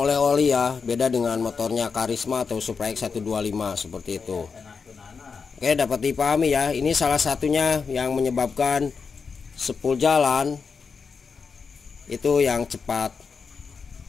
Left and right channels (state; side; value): quieter; right; 5.4 dB